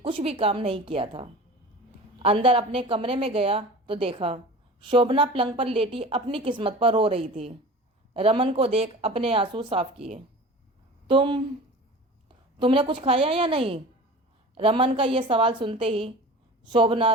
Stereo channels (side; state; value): both; normal; correlation 0.37